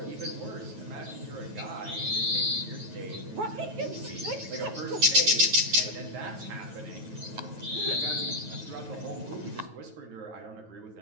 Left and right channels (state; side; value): late; left; 9.3 ms